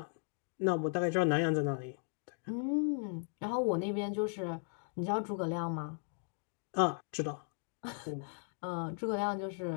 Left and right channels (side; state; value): right; silent; 53 dB below the other